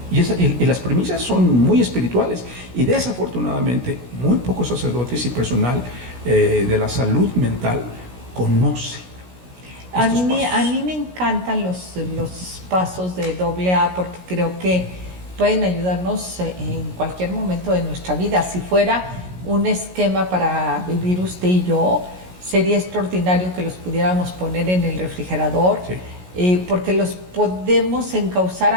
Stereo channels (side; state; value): left; late; 16 ms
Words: Y las premisas son muy espirituales, y desafortunadamente muy pocos sacerdotes y personal de la salud mental conoce. A mí me encantan los pasos de AA, porque creo que pueden ayudarnos en cualquier momento de nuestra vida. Si fuera un esquema para vivir usted y yo, sería extraordinario que los pudiéramos poner en el refrigerador, sí. Porque los podemos encauzar